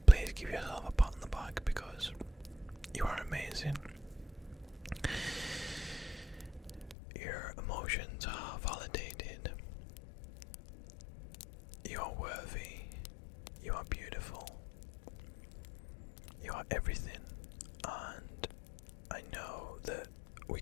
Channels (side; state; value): right; drops out; at 7.0 s